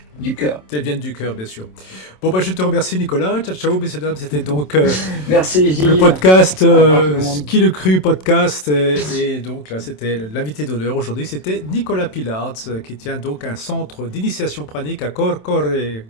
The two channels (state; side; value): late; right; 27 ms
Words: du cœur. Elles viennent du cœur, bien sûr. Bon, bah, je te remercie, Nicolas. Ciao, ciao, messieurs, dames. C'était donc Merci, Gilles. le podcast, Au revoir, tout le monde. Qui le cru podcast. Et donc là, c'était l'invité d'honneur aujourd'hui. C'était Nicolas Pilards, qui tient donc un centre d'initiation pranique à Cocore,